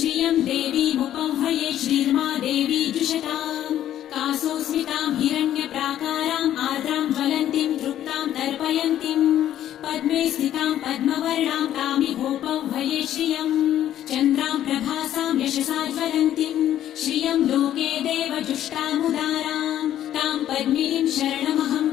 देवीमुपह्वये श्रीर्मा देवी जुषताम् कासोऽस्मितां हिरण्यप्राकाराम् आर्द्रां ज्वलन्तीं तृप्तां तर्पयन्तीं पद्मे स्थितां पद्मवर्णां तामिहोपह्वये श्रियम् चन्द्रां प्रभासां यशसा ज्वलन्तीं श्रियं लोके देवजुष्टामुदारां तां पद्मिनीं शरणमहं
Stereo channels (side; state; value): right; quieter; 11.7 dB